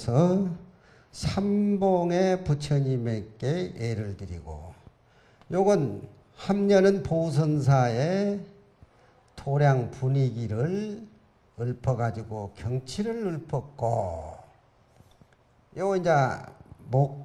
삼봉의 부처님에게 예를 드리고, 요건 함녀는 보선사의 도량 분위기를 읊어가지고 경치를 읊었고, 요 이제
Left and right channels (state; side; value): identical; both; correlation 1.00